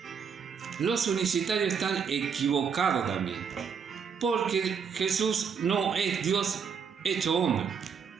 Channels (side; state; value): left; quieter; 6.5 dB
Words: Los unicitarios están equivocados también, porque Jesús no es Dios hecho hombre.